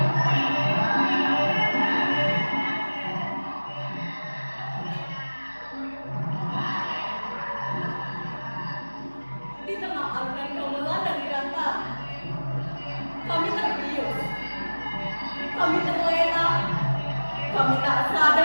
Di tengah alunan gamelan dan keretan, kami terbius, kami terlena, kami tak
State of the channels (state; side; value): inverted; both; correlation -1.00